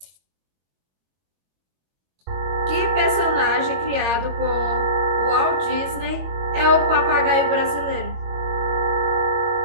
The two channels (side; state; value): left; late; 21 ms